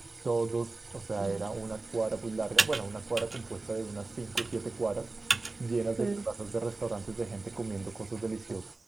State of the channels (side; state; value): left; quieter; 3.4 dB